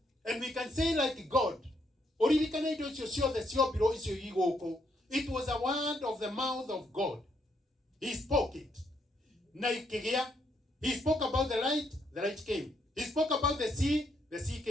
and we can say like God. Oririkana indo cio ciothe ciobiro icio igoko. It was a word of the mouth of God. He spoke it. Na ikigia. He spoke about the light came. He spoke about the sea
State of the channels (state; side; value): normal; both; correlation 0.74